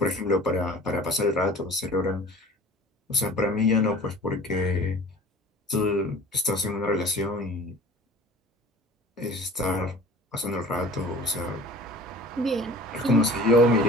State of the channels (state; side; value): normal; both; correlation 0.43